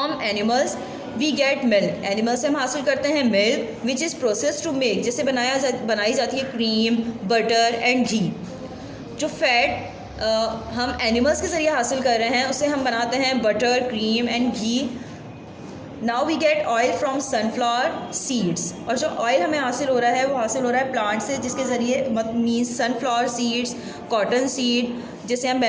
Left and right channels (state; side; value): identical; both; correlation 1.00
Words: animals we get milk. Animal से हम हासिल करते हैं milk which is process to make, जिससे बनाई जाती है क्रीम, बटर एंड घी. जो फैट हम एनिमल्स के ज़रिए हासिल कर रहे हैं उससे हम बनाते हैं butter, cream and ghee. Now we get oil from sunflower seeds. और जो ऑयल हमें हासिल हो रहा है वो हासिल हो रहा है प्लांट से, जिसके ज़रिए means sunflower seeds, cotton seed जिसे हम